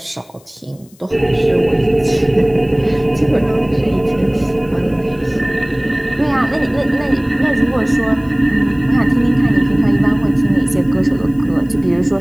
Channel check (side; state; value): left; noise; hiss, 29 dB below the sound